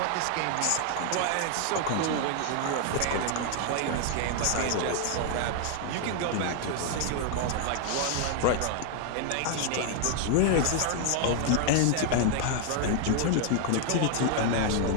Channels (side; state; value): both; different; correlation 0.00